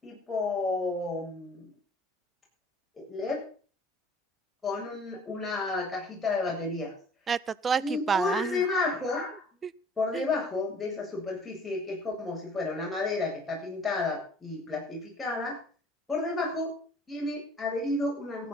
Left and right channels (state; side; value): normal; both; correlation 0.52